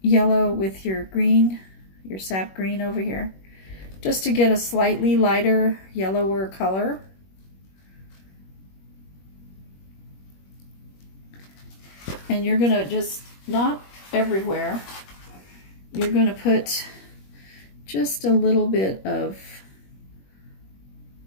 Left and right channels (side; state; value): right; late; 21 ms